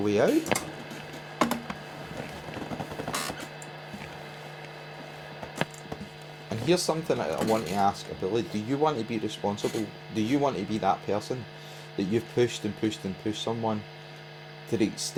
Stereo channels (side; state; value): both; identical; correlation 1.00